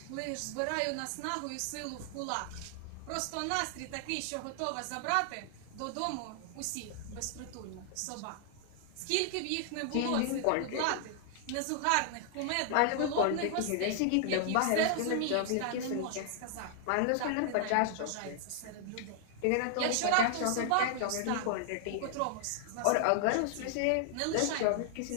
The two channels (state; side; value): different; both; correlation 0.00